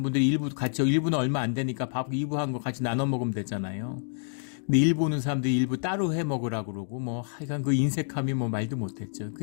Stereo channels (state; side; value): silent; right; digital silence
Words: 분들이 1부는 얼마 안 되니까 밥 2부 한 거 같이 나눠 먹으면 되잖아요. 근데 1부 오는 사람들이 1부 따로 해 먹으라고 그러고, 뭐 하여간 그 인색함이 뭐 말도 못했죠.